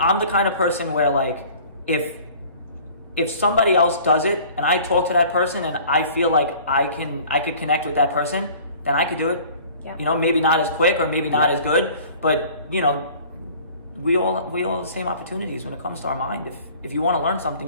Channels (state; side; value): inverted; both; correlation -0.48